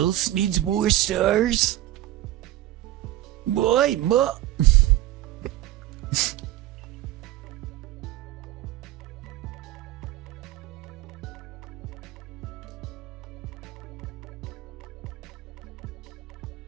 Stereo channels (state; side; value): quieter; left; 14.6 dB